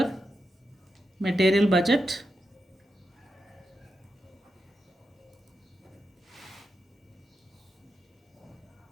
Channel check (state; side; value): normal; both; correlation 0.87